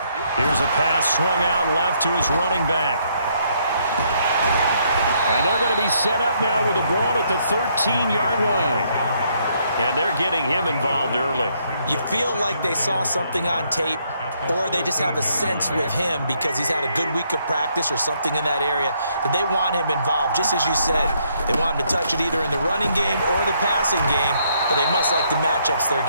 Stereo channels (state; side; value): inverted; both; correlation -0.71